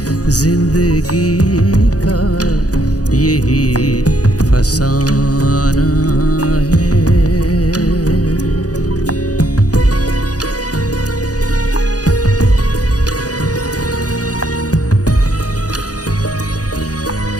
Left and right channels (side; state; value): right; late; 0.67 ms